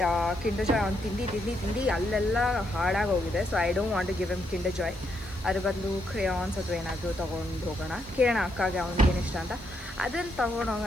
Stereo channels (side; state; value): left; noise; hiss, 25 dB below the sound